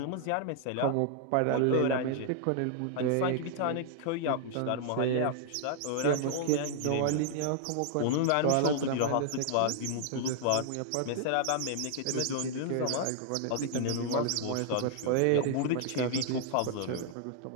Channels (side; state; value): both; different; correlation 0.00